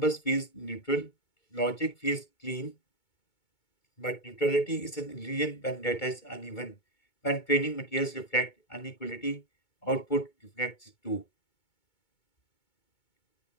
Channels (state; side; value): late; right; 2.2 ms